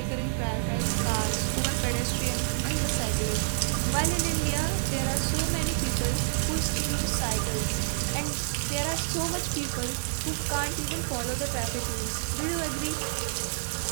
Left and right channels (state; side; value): silent; left; 55 dB below the other